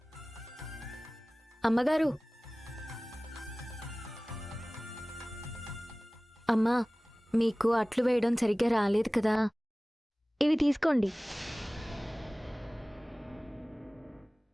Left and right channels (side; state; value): both; normal; correlation 0.98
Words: అమ్మగారు, అమ్మా, మీకు అట్లు వేయడం సరిగ్గా రాలేదు కదా, ఇవి తీసుకోండి.